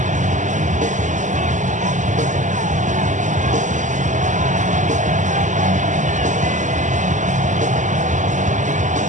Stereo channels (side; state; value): left; late; 0.36 ms